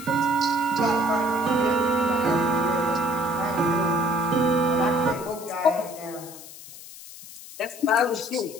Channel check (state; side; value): noise; left; hiss, 16 dB below the sound